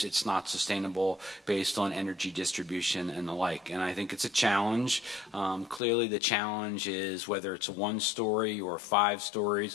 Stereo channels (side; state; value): right; drops out; at 5.8 s